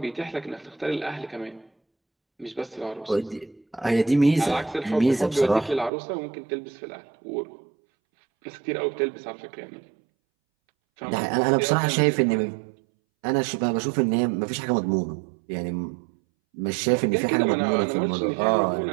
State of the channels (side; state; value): left; drops out; at 5.9 s